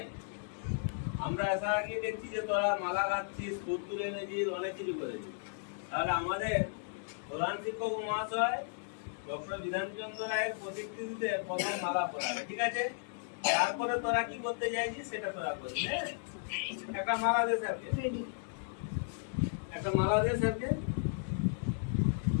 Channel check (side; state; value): right; silent; digital silence